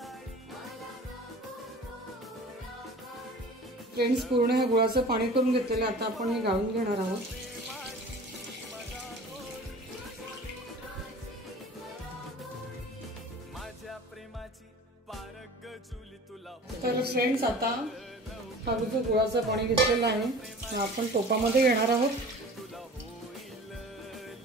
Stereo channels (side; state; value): both; normal; correlation 0.42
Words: फ्रेंड्स, पूर्ण हे गुळाचं पाणी करून घेतलेलं आता आपण हे गाळून घेणार आहोत। तर फ्रेंड्स, आता हा जो गुळाचं पाणी घेतलेलं आहे आपण टोपामध्ये घेणार आहोत।